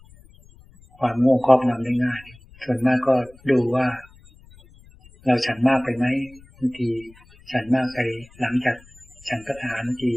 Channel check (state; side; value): noise; left; rumble, 25 dB below the sound